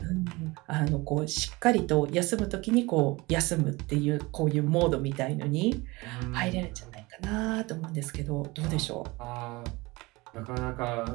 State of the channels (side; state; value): left; quieter; 23.0 dB